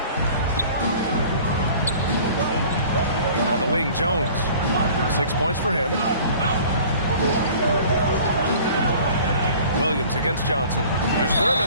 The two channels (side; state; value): both; inverted; correlation -0.47